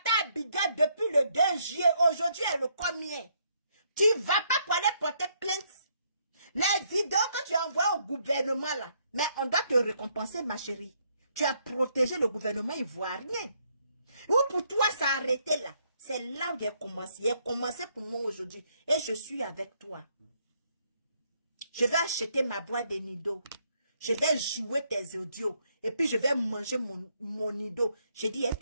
à Abidjan depuis le 2 juillet. Aujourd'hui, est le combien? Tu vas pas pour aller porter plainte. Les vidéos que tu envoies au gouvernement là. Mais on doit te récompenser, ma chérie. Tu as protégé le gouvernement ivoirien. Ou pour toi, ça a arrêté là. C'est là où il a commencé. Il a commencé pour moi aujourd'hui. Et je suis avec toi. Je vais acheter ma boîte de nido. Je vais jouer tes audios. Et puis je vais manger mon nido. J'ai dit, elle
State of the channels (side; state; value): both; inverted; correlation -0.71